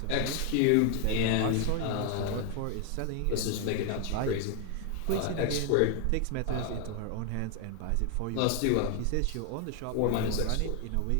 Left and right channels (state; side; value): different; both; correlation 0.00